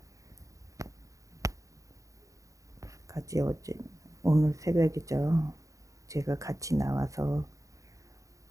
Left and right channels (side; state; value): left; late; 0.16 ms